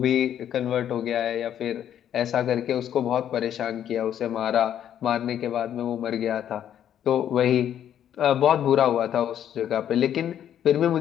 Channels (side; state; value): right; quieter; 10.1 dB